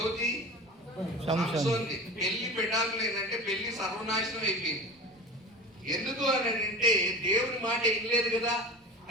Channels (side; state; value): both; normal; correlation 0.34